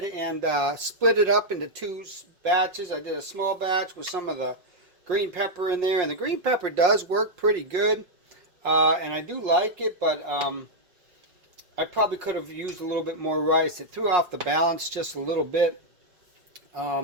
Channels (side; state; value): left; late; 5.6 ms